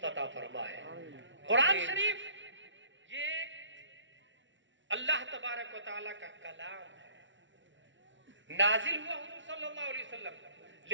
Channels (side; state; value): left; late; 0.55 ms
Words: अता फरमाए। कुरान शरीफ ये अल्लाह तबारक व तआला का कलाम है, नाजिल हुआ हुजूर सल्लल्लाहु अलैहि वसल्लम,